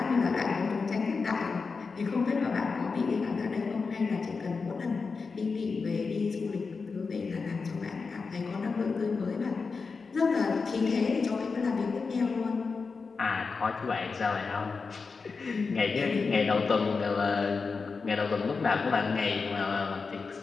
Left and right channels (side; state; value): right; quieter; 4.7 dB